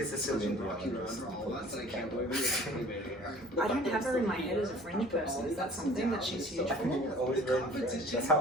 is Celine Dion. I don't have her in my head as a fringe person. Is that something that she's huge I for? think it's always very French. That's how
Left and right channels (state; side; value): normal; both; correlation 0.48